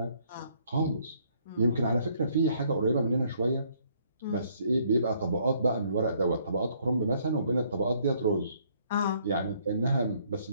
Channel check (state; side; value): inverted; both; correlation -0.66